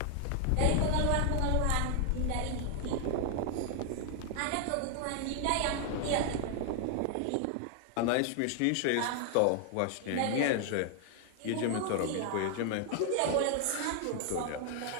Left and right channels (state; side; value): different; both; correlation 0.00